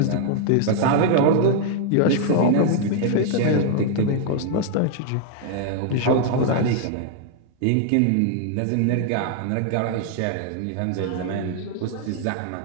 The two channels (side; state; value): both; different; correlation 0.00